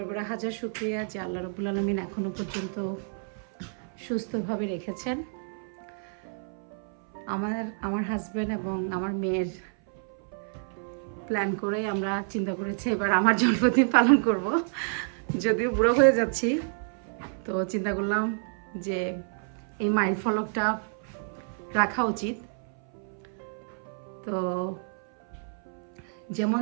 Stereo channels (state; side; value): silent; left; 58 dB below the other